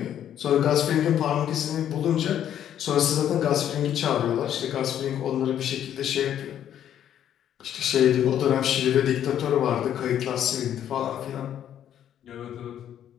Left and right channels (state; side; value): quieter; right; 10.3 dB